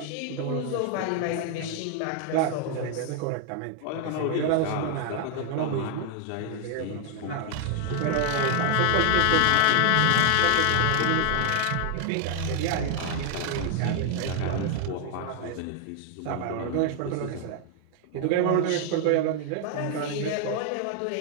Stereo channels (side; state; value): both; different; correlation 0.00